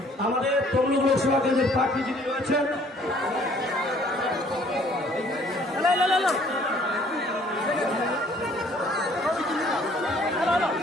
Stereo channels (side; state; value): both; normal; correlation 0.58